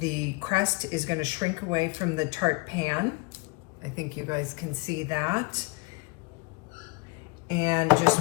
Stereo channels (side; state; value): right; quieter; 26.1 dB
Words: crust is going to shrink away from the tart pan. I think you guys can see that. And just